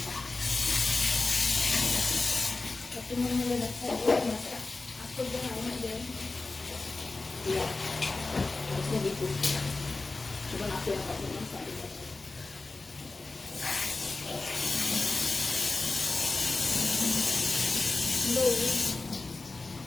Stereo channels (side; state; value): right; quieter; 3.5 dB